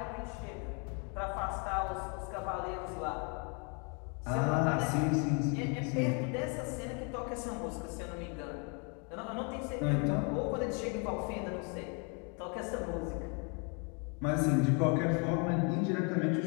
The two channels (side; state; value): right; quieter; 35.6 dB